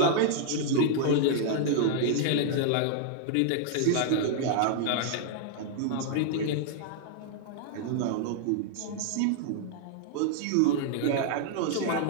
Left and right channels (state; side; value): different; both; correlation -0.01